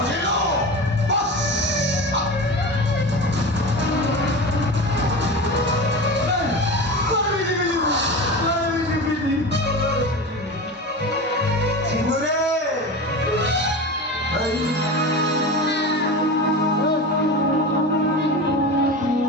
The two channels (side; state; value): both; normal; correlation 0.28